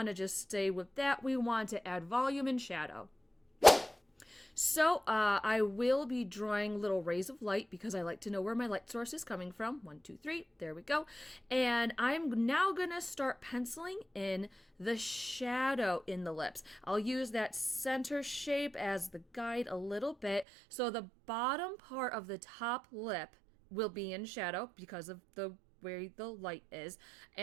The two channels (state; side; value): drops out; left; at 20.5 s